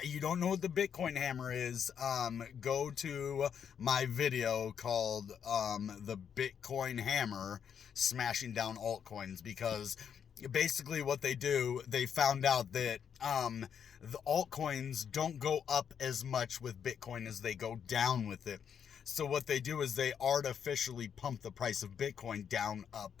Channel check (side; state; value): right; quieter; 7.8 dB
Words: don't know what the Bitcoin hammer is, go to my video called the Bitcoin hammer smashing down altcoins, because basically what they do, they found out that the altcoins don't go up as much with Bitcoin as they go down with it. So what they do is they artificially pump the price of Bitcoin down, up,